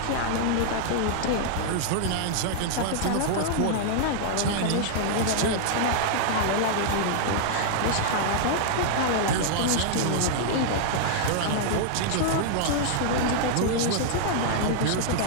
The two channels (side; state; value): both; different; correlation -0.01